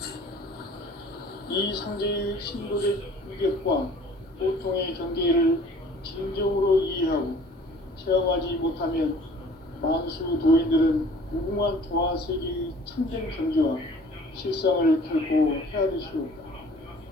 이 상제의 신도적 위력과 보통의 경계를 진정으로 이해하고 생각하면 만수 도인들은 무궁한 조화 세계의 참된 경지와 실상을 결코 헤아릴 수 없다.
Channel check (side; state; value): both; normal; correlation 0.50